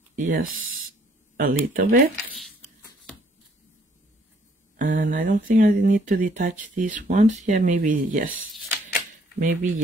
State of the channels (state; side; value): normal; both; correlation 0.63